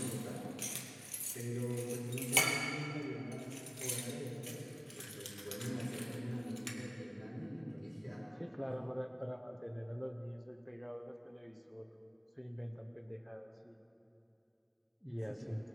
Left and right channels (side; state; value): both; identical; correlation 1.00